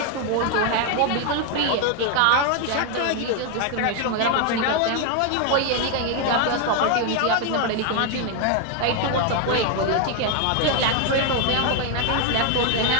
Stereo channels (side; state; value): both; different; correlation 0.01